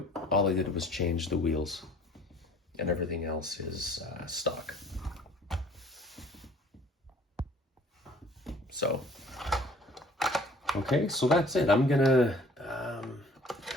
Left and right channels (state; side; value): normal; both; correlation 0.53